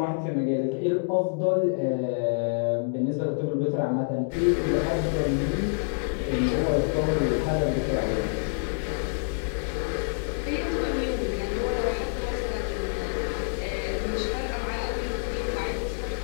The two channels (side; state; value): right; silent; digital silence